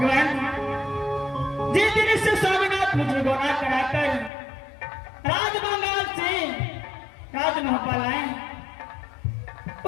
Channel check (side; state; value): right; drops out; at 4.3 s